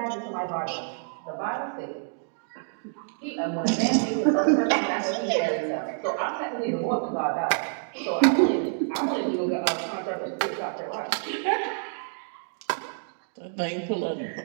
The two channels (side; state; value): left; silent; digital silence